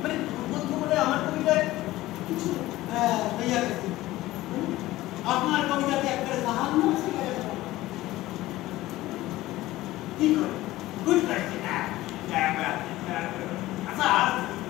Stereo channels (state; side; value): quieter; right; 16.9 dB